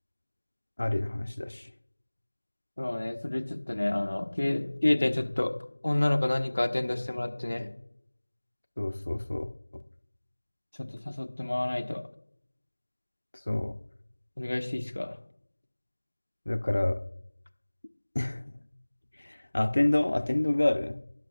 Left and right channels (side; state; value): both; inverted; correlation -1.00